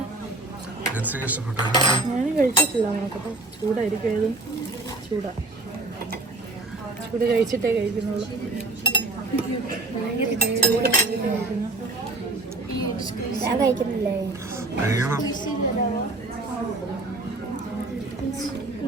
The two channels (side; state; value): left; quieter; 3.0 dB